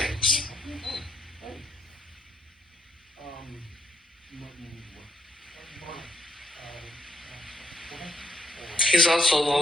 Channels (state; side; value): normal; both; correlation 0.72